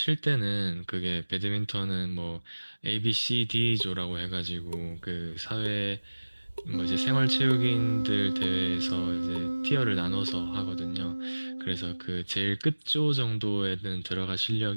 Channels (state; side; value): inverted; both; correlation -1.00